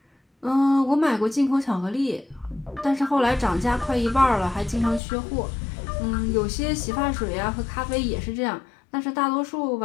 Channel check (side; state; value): right; drops out; at 5.0 s